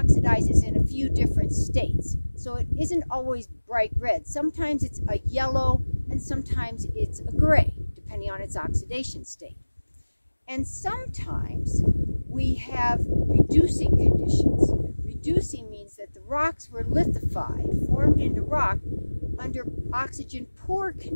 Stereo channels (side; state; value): both; inverted; correlation -1.00